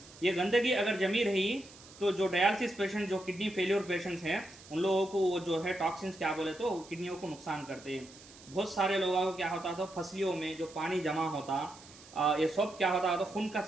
ये गंदगी अगर जमी रही तो जो डायलिसिस पेशेंट जो किडनी फेलियर पेशेंट्स हैं उन लोगों को वो जो है टॉक्सिन्स क्या बोले तो किडनियों को नुकसान करते हैं। बहुत सारे लोगों को क्या होता था फसलियों में जो पानी जमा होता ये सब क्या होता तो खून का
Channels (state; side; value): noise; right; hiss, 20 dB below the sound